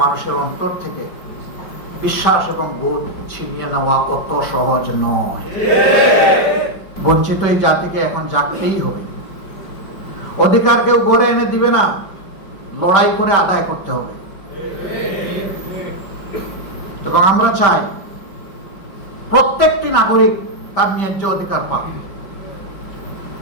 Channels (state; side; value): late; right; 5.2 ms